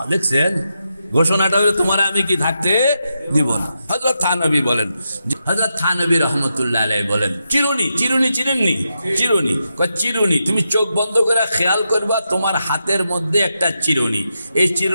দেখছেন ঘোষণাটা হলো তোমার আমি কি থাকতে দিব না। হযরত থানবী বলেন, হযরত থানবী রাহমাতুল্লাহ আলাইহি বলেন, চিরুনি, চিরুনি চিনেননি? চিরুনি, চিরুনি তুমি চোখ বন্ধ করে খেয়াল করবা, তোমার হাতের মধ্যে একটা চিরুনি। এই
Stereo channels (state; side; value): inverted; both; correlation -0.86